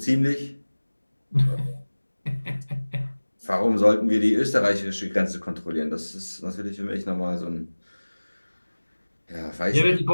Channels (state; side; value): inverted; both; correlation -1.00